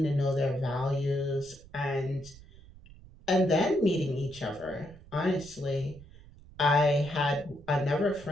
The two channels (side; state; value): right; noise; rumble, 21 dB below the sound